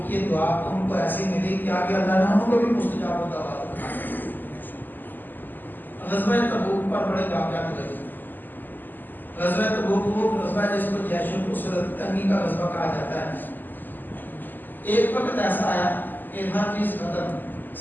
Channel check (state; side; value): late; right; 0.088 ms